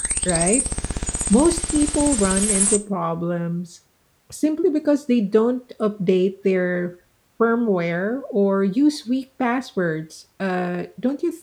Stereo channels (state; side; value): identical; both; correlation 1.00